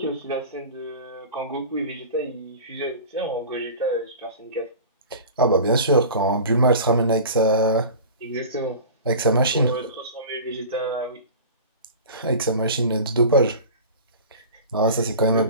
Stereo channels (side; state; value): both; inverted; correlation -0.36